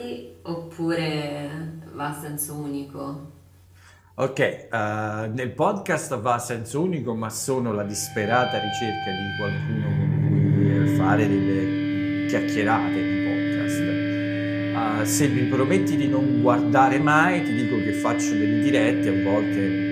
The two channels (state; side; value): identical; both; correlation 1.00